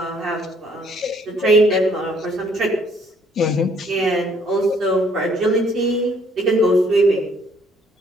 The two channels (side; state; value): both; normal; correlation 0.63